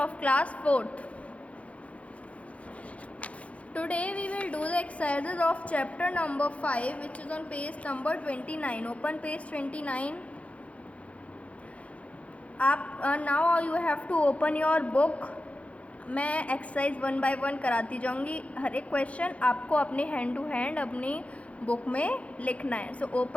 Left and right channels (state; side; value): late; right; 0.064 ms